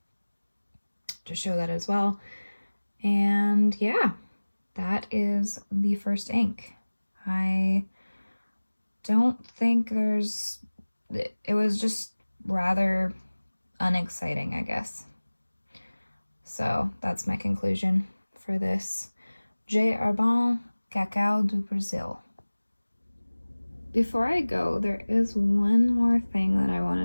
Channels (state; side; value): inverted; both; correlation -1.00